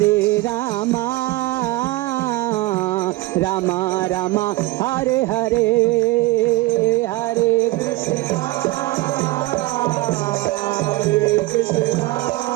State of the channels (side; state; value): left; quieter; 19.6 dB